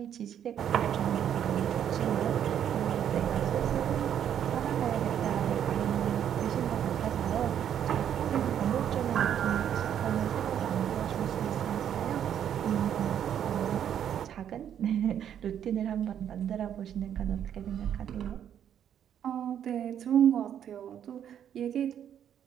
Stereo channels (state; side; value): quieter; left; 9.5 dB